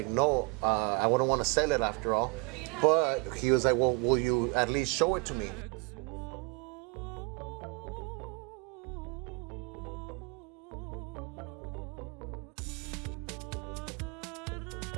no, I wouldn't want to sell it after all. But he was like, well, will you at least show it to me?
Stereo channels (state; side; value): quieter; left; 28.7 dB